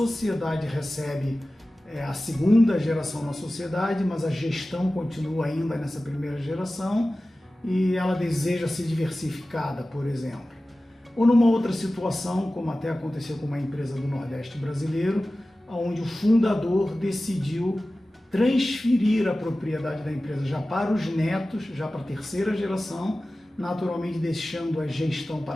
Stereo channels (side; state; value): both; normal; correlation 0.96